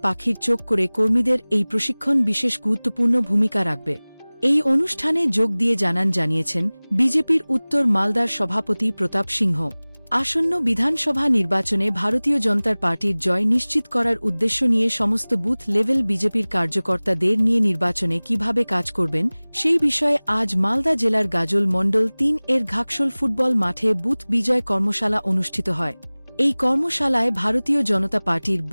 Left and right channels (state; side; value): inverted; both; correlation -1.00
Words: পাখির চোখ করে কর্মীদের এই প্রশিক্ষণ বিশেষ গুরুত্বপূর্ণ ভূমিকা রাখবে। এই অনুষ্ঠানে যোগ দিয়ে জানিয়েছেন বিজেপির উত্তর মালদার সভাপতি প্রতাপ সিংহ। আসন্ন বিধানসভা নির্বাচনে ভারতীয় জনতা পার্টির জয় নিশ্চিত করার উদ্দেশ্য নিয়ে সমস্ত বুথ লেভেল বিজেপির কার্যকর্তাদের নিয়ে নির্বাচনে কিভাবে কাজ করবেন সেই বিষয়ে আজ মালদা জেলার গাজল মণ্ডল ৩ এর ঘাকশোল ফুটবল মাঠে বুথ বিজয় কর্মশালা অনুষ্ঠিত হয়। এই কর্মশালায় ভারতীয় জনতা পার্টির